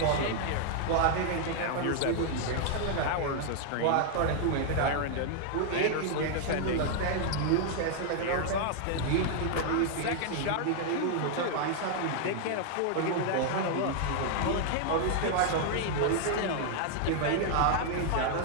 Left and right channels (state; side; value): different; both; correlation 0.00